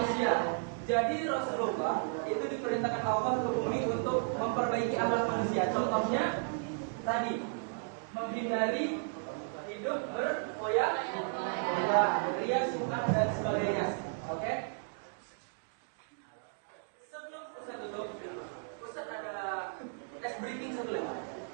Jadi Rasulullah itu diperintahkan Allah ke bumi untuk memperbaiki akhlak manusia. Contohnya tadi menghindari hidup berfoya-foya, ria, sunat dan sebagainya. Oke? Sebelum Ustaz tutup, Ustaz ada tes briefing sebelum.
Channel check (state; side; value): silent; left; digital silence